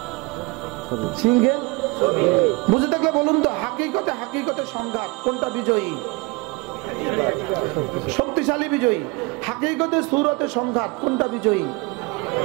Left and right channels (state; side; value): quieter; left; 26.2 dB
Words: সিংহের বুঝে থাকলে বলুন তো, হাকিকতের সংঘাত কোনটা বিজয়ী? শক্তিশালী বিজয়ী। হাকিকতের সুরতের সংঘাত কোনটা বিজয়ী?